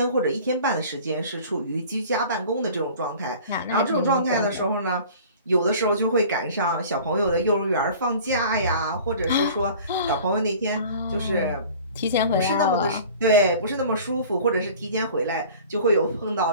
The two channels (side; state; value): both; inverted; correlation -0.44